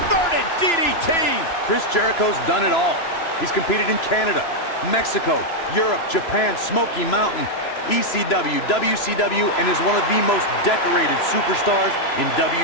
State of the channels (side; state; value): right; late; 3.0 ms